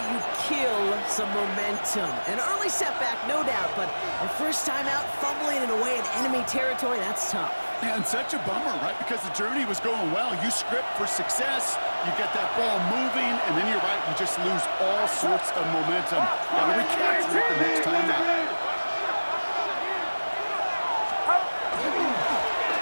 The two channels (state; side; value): inverted; both; correlation -1.00